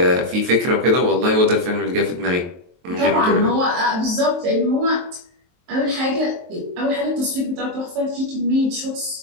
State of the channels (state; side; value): late; left; 23 ms